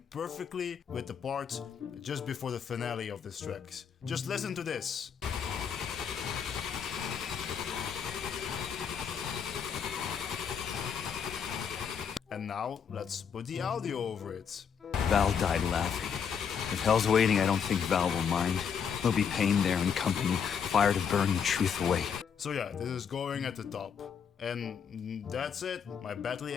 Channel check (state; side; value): quieter; right; 7.2 dB